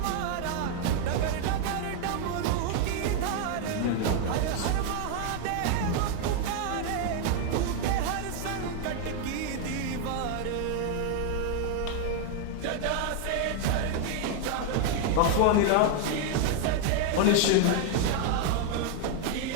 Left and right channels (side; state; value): both; different; correlation 0.00